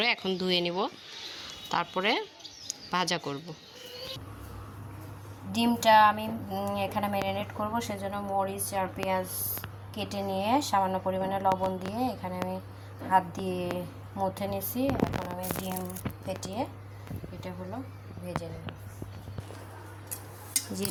এখন ধুয়ে নিব, তারপরে ভাজা করব। ডিমটা আমি এখানে ম্যারিনেট করব, সেজন্য মরিচ আর পেঁয়াজ কেটে নিয়ে সামান্য পরিমাণে লবণ দিয়ে এখানে আমি হাত দিয়ে মুথে নিয়েছি। এখন আমি ডিম ফেটিয়ে এটা হলো ভেজে নেব। যে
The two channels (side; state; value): both; identical; correlation 1.00